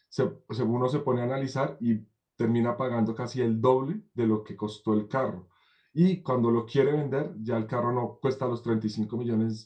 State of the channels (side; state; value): both; identical; correlation 1.00